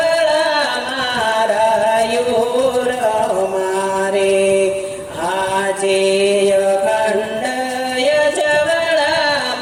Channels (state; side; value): identical; both; correlation 1.00